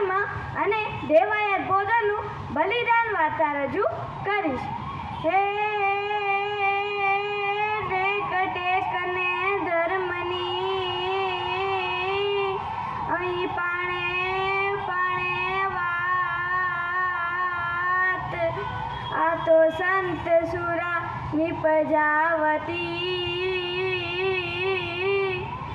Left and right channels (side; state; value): both; identical; correlation 1.00